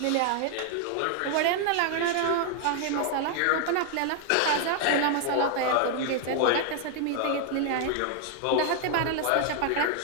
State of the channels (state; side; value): different; both; correlation 0.00